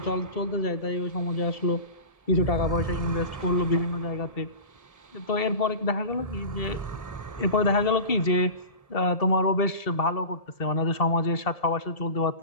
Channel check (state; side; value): late; right; 1.7 ms